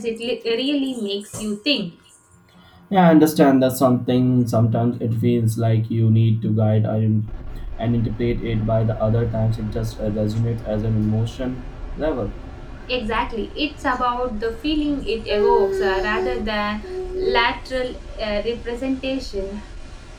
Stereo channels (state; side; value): identical; both; correlation 1.00